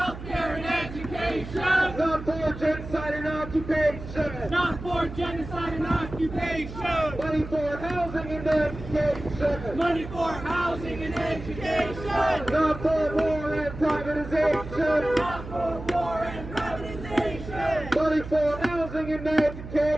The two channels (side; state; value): right; noise; hum, 11 dB below the sound